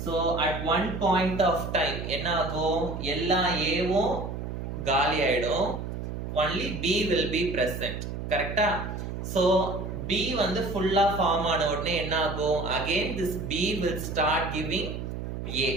So at one point of time என்ன ஆகும்? எல்லா Aவும் காலி ஆயிடும், only B will be present. கரெக்ட்டா? So B வந்து ஃபுல்லா ஃபார்ம் ஆன உடனே என்ன ஆகும்? Again this B will start giving A.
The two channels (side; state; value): right; noise; hum, 6 dB below the sound